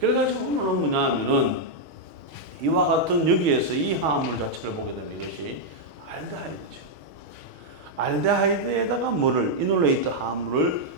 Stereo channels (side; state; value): left; late; 6.4 ms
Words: 오늘은 뭐냐 하면은 이와 같은 여기에서 이 화합물 자체를 보게 되면 이것이 알데하이드죠. 알데하이드에다가 뭐를 이놀레이트 화합물을